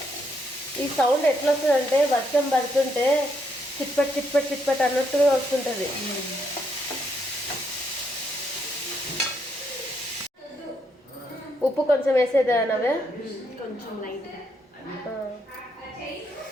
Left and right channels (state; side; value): normal; both; correlation 0.76